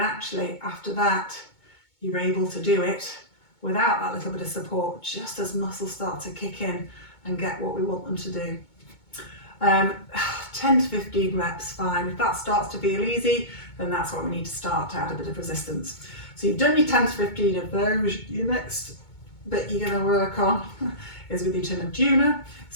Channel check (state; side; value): late; right; 2.2 ms